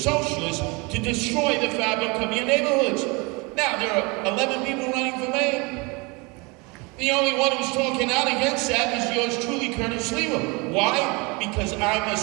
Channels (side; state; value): left; quieter; 27.8 dB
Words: to destroy the fabric of your neighborhoods. Now, there are 11 people running for mayor. The only one who's talking out against that is yours truly, Curtis Lever. Why? Because I'm a